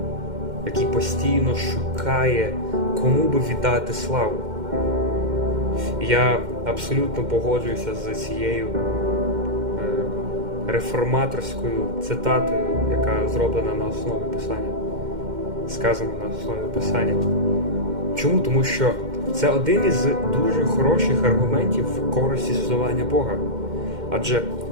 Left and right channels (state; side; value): late; left; 2.1 ms